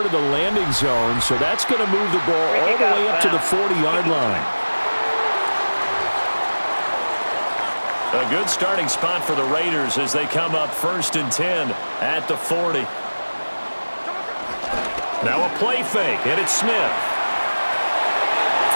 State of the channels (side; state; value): both; inverted; correlation -1.00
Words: of the landing zone, so that's going to move the ball all the way up to the 40-yard line. A good starting spot for the Raiders as they come up 1st and 10 at the 40. Now a play fake, and it's Smith.